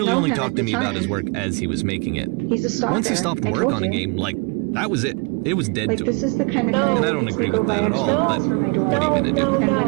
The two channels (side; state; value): left; quieter; 32.5 dB